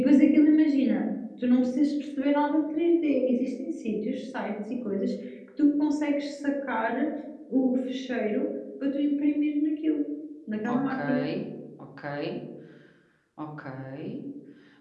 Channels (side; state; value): both; identical; correlation 1.00